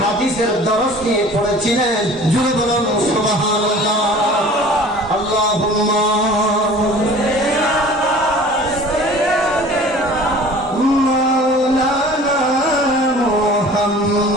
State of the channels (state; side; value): normal; both; correlation 0.45